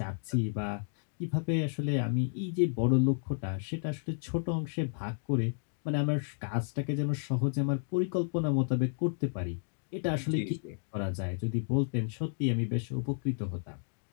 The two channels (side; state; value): right; silent; digital silence